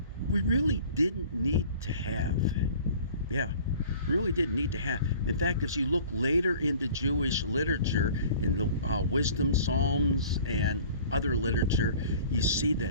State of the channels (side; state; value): both; inverted; correlation -0.48